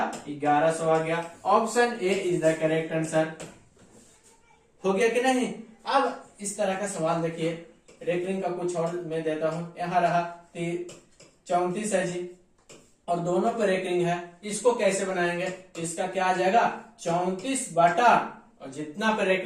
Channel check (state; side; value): identical; both; correlation 1.00